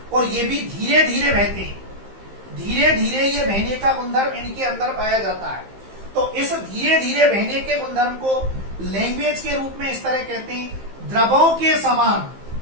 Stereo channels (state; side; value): late; left; 15 ms